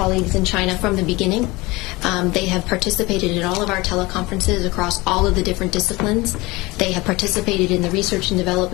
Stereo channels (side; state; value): right; quieter; 22.4 dB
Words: in China from the beginning. They have participated in all of our teleconferences across all of the different disciplines. They have participated in the research and